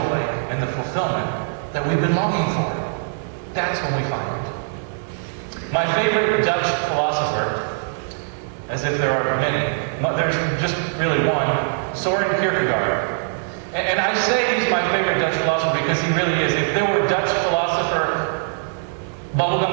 and the fulfillment that we've been longing for. That's when we find it. My favorite Dutch philosopher, as if there are many, there's just really one, Soren Kierkegaard. And I say he's my favorite Dutch philosopher because he really is. If there were Dutch philosopher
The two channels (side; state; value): left; silent; 64 dB below the other